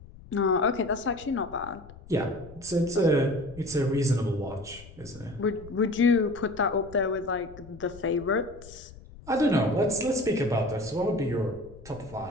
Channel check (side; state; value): left; noise; rumble, 19 dB below the sound